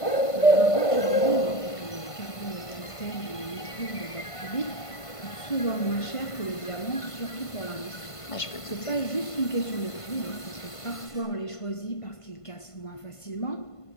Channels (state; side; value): late; right; 1.5 ms